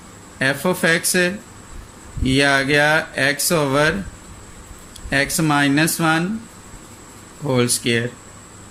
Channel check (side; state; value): both; identical; correlation 1.00